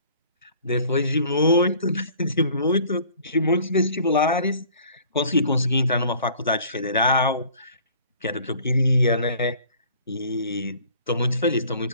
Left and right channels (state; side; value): inverted; both; correlation -0.52